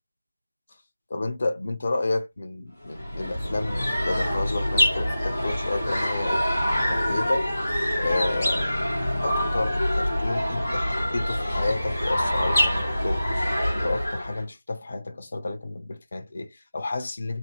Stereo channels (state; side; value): inverted; both; correlation -0.95